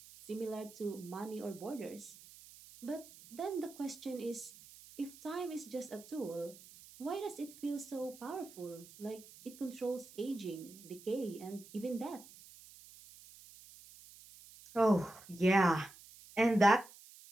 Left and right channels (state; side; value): noise; right; hiss, 19 dB below the sound